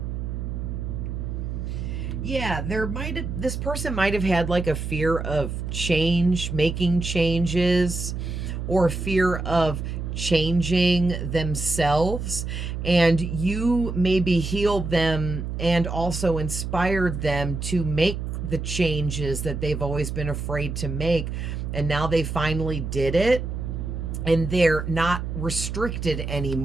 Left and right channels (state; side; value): noise; right; hum, 4 dB below the sound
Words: Yeah, this person might have had like a fear of change, making changes, or fear of changing themselves, and you maybe healed them and also inspired them to make the changes that they've always been afraid to make, and now they finally did it. And they're not restricted